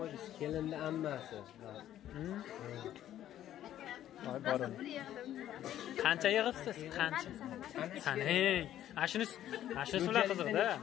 Kelinni ammasi. Voy borim. Qancha yig'ibsiz? Qancha? Sanang. Ashuni ular qiziqda.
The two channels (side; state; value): right; quieter; 11.9 dB